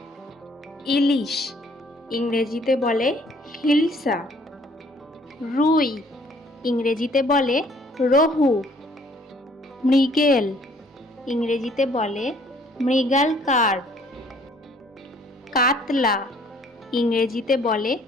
ইলিশ ইংরেজিতে বলে হিলসা। রুই ইংরেজিতে বলে রোহু। মৃগেল ইংরেজিতে বলে মৃগাল কার্প। কাতলা ইংরেজিতে বলে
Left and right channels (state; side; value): normal; both; correlation 0.60